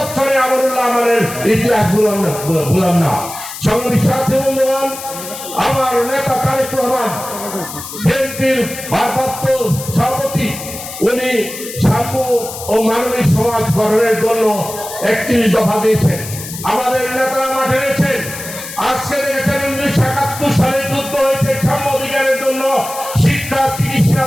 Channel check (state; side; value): noise; left; hiss, 11 dB below the sound